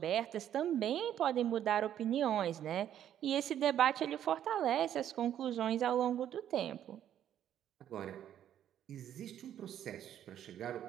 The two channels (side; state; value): left; quieter; 10.5 dB